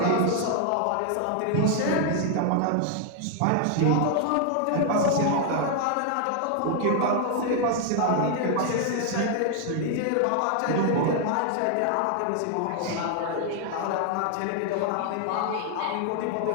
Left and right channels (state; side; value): different; both; correlation 0.00